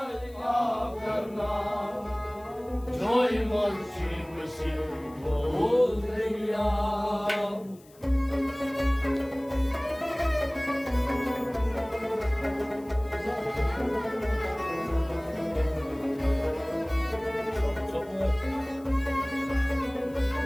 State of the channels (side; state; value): left; noise; hiss, 27 dB below the sound